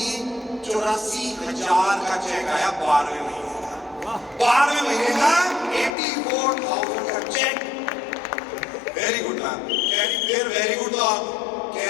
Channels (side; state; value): right; drops out; at 6.0 s